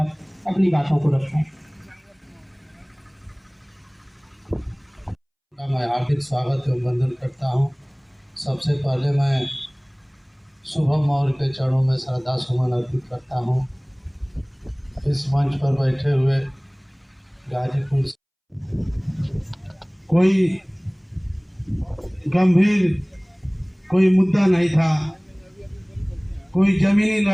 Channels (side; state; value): both; identical; correlation 1.00